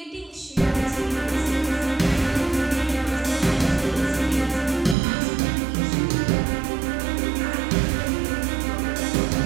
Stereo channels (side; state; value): left; drops out; at 5.0 s